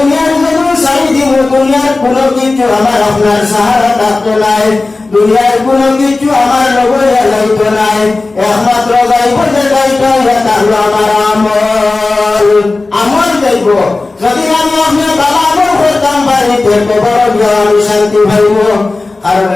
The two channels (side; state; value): right; quieter; 3.4 dB